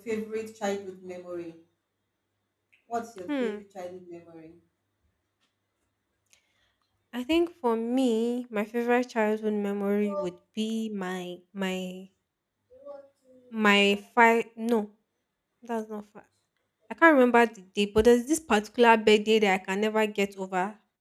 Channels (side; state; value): both; identical; correlation 1.00